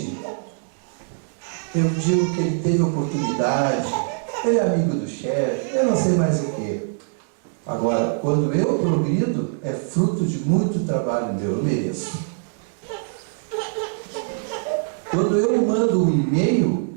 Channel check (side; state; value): left; silent; digital silence